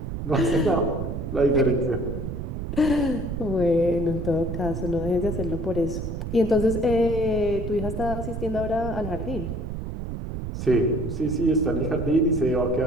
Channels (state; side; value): noise; right; rumble, 5 dB below the sound